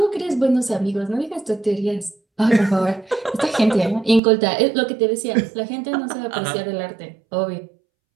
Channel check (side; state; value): left; drops out; at 4.2 s